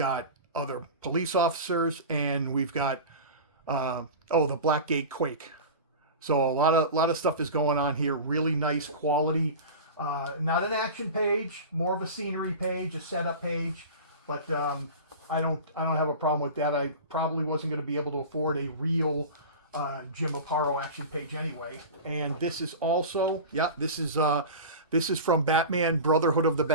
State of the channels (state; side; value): inverted; both; correlation -0.31